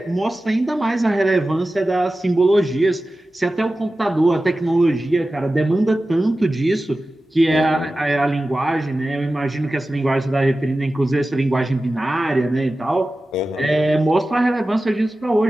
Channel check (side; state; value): both; normal; correlation 0.95